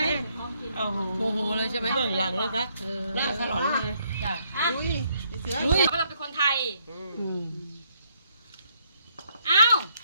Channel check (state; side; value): inverted; both; correlation -0.71